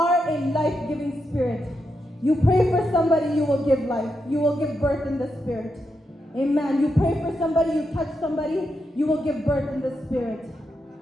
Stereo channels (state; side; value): normal; both; correlation 0.84